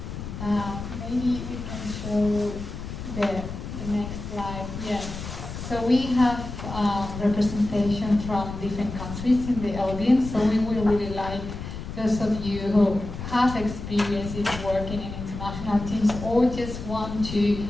Maybe we can show the next slide. Yes. So we have representation from different countries in the audience. So we will really like those of you who have experience in working in international teams or just want to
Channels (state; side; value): noise; left; rumble, 8 dB below the sound